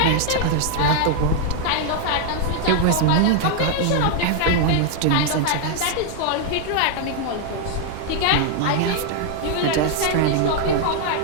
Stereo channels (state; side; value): different; both; correlation 0.00